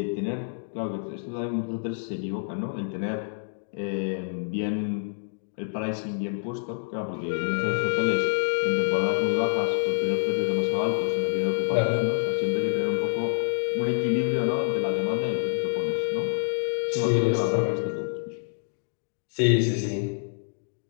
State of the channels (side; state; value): right; silent; digital silence